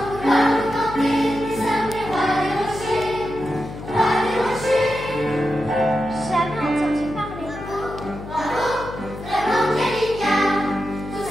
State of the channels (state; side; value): noise; left; hum, 12 dB below the sound